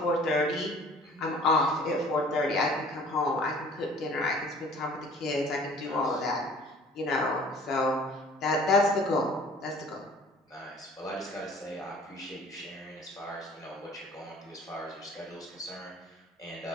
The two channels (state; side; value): normal; both; correlation 0.50